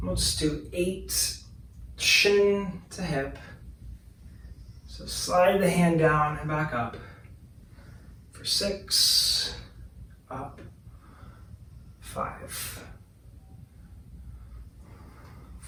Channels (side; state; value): both; identical; correlation 1.00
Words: We'll just do 8, shin to hip. So slide the hand down and back up. For 6, up, 5,